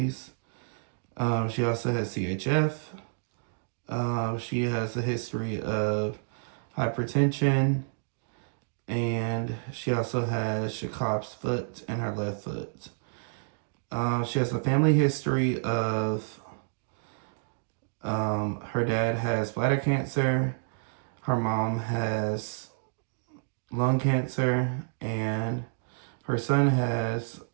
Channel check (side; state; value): left; silent; digital silence